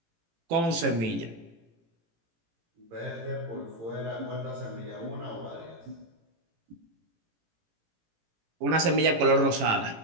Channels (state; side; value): late; left; 18 ms